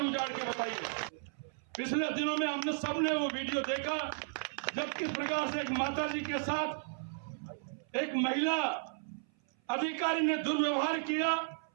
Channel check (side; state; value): left; silent; 55 dB below the other